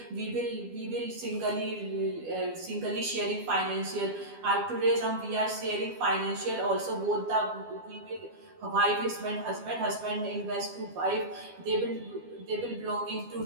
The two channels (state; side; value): late; left; 12 ms